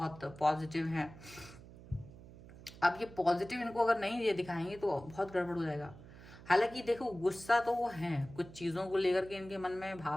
पॉजिटिव है। अब ये पॉजिटिव इनको अगर नहीं ये दिखाएंगे तो बहुत गड़बड़ हो जाएगा। हालांकि देखो, गुस्सा तो वो है, कुछ चीज़ों को लेकर के इनके मन में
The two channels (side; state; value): right; noise; hum, 18 dB below the sound